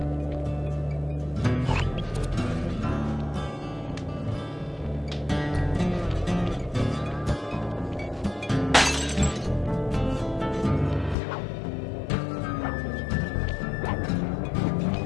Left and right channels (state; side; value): drops out; right; at 11.2 s